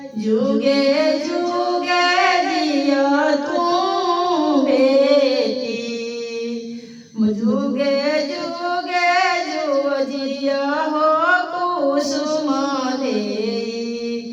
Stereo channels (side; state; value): both; identical; correlation 1.00